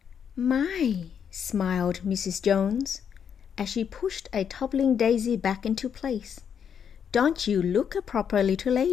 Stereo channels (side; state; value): right; quieter; 7.7 dB